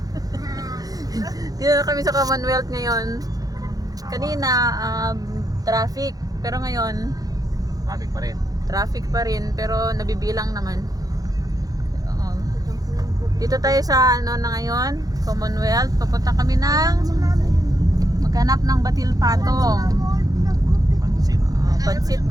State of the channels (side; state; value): left; late; 0.18 ms